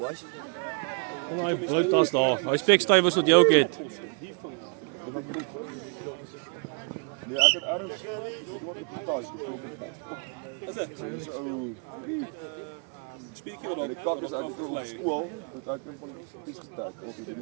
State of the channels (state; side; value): quieter; left; 39.3 dB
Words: Daai broodtas daar. Daai spekstuiwers wat jy ook het. Nee, ek het ergens wat op die tas. Spiertjie wat die kak is uit op skool, want ek kom van die spies gestek of het in